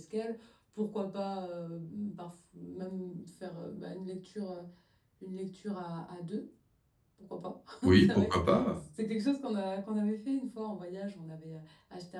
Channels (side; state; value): both; identical; correlation 1.00